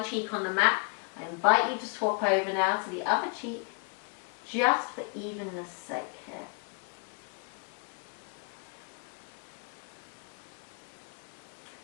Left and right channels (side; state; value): right; quieter; 38.7 dB